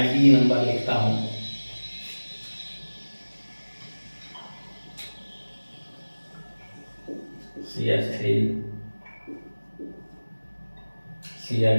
ई नंबर लिखता हूं, CH3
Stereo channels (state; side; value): inverted; both; correlation -1.00